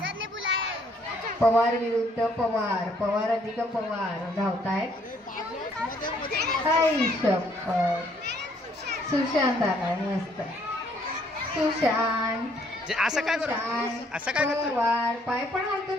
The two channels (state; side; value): normal; both; correlation 0.66